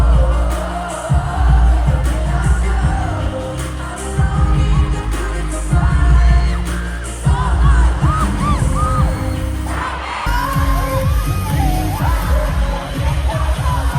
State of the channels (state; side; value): identical; both; correlation 1.00